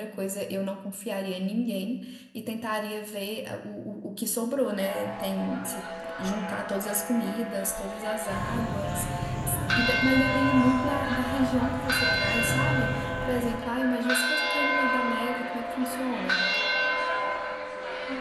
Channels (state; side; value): identical; both; correlation 1.00